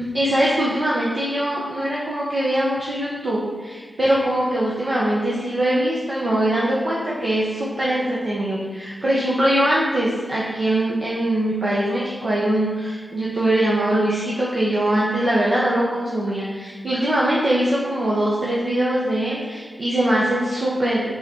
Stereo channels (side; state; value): both; normal; correlation 0.88